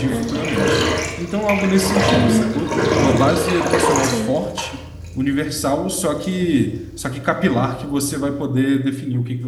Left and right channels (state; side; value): identical; both; correlation 1.00